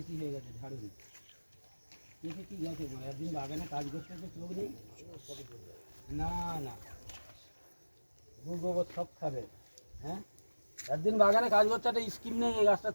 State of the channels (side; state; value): both; inverted; correlation -1.00